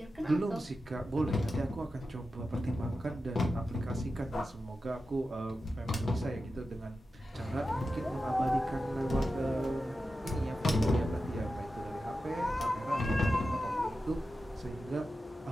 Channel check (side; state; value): both; normal; correlation 0.92